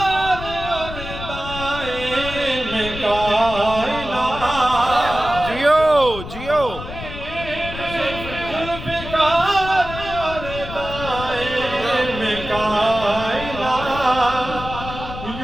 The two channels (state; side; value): noise; left; rumble, 10 dB below the sound